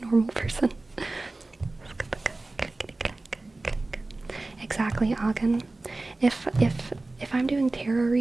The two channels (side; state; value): left; quieter; 3.1 dB